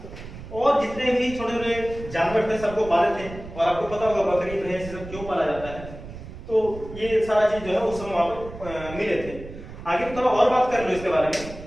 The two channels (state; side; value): noise; right; rumble, 13 dB below the sound